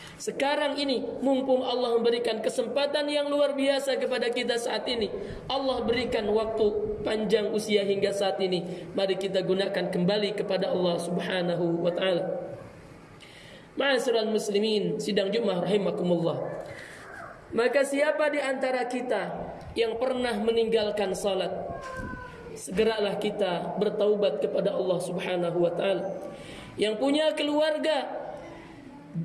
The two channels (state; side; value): identical; both; correlation 1.00